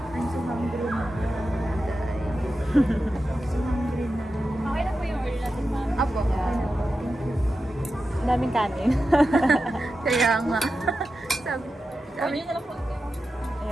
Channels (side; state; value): both; normal; correlation 0.91